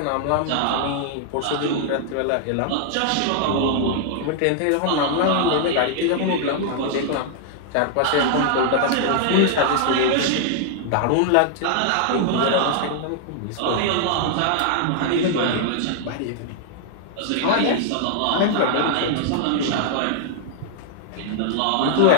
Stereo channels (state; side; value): different; both; correlation -0.01